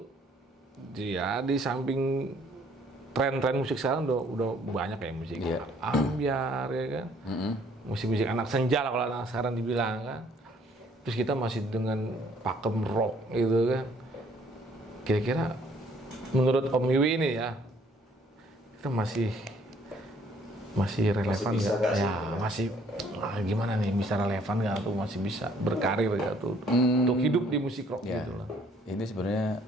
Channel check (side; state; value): both; normal; correlation 0.61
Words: di samping tren-tren musik sekarang udah banyak ya musik ambyar ya kan. Musik-musik anak senja lah kalau anak sekarang dibilang kan. Terus kita masih dengan pakem rock gitu kan. Kira-kira menurut Om Wiwi ini ya, kita masih relevan nggak? Ya masih gimana nih, bisa relevan nggak tuh, masih bisa berkarir nggak tuh untuk hidup di musik rock gitu lah. Ini sebenarnya